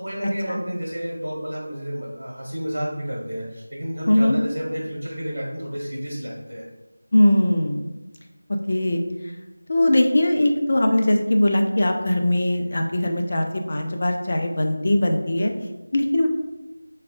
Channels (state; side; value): inverted; both; correlation -0.98